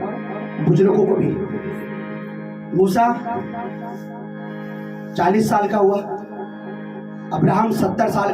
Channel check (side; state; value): both; identical; correlation 1.00